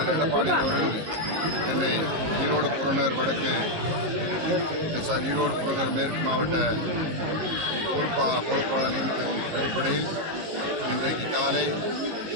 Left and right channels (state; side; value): late; left; 19 ms